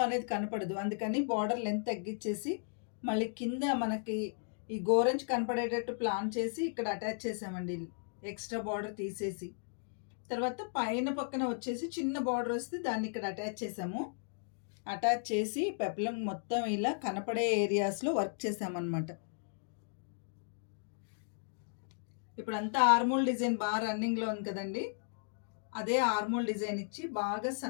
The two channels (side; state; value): right; silent; digital silence